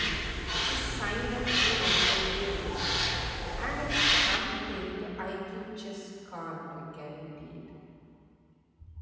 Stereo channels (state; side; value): identical; both; correlation 1.00